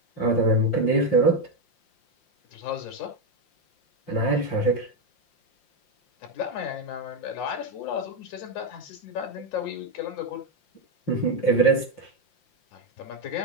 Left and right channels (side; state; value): right; late; 5.7 ms